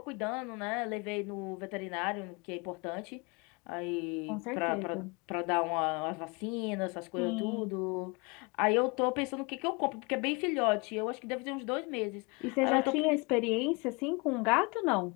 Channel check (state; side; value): quieter; right; 29.2 dB